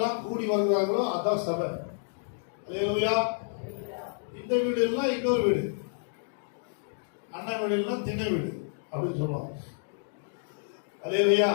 கூடி வருகிறார்களோ அதான் சபை. அல்லேலூயா. இந்த வீடு எல்லாம் இன்னொரு வீடு, அண்ணன் வீடு எல்லாம் திண்ணை வீடு அப்படின்னு சொல்லுவாங்க. அல்லேலூயா.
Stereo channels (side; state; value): right; silent; digital silence